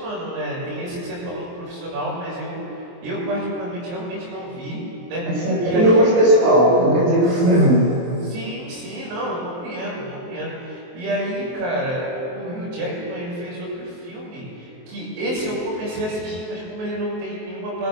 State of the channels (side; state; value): left; late; 23 ms